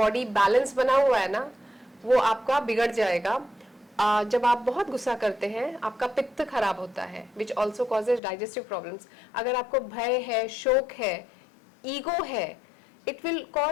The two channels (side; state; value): right; drops out; at 8.2 s